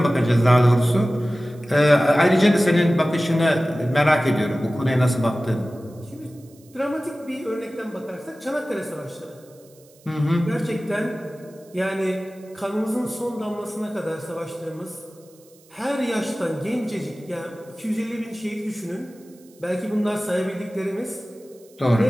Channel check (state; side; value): noise; right; hiss, 28 dB below the sound